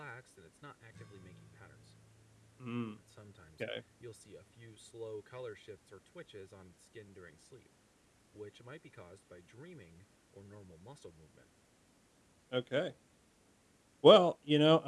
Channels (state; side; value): identical; both; correlation 1.00